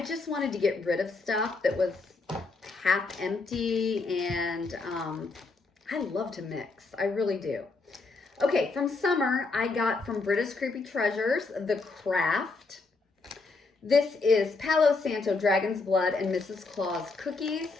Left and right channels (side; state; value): right; quieter; 3.9 dB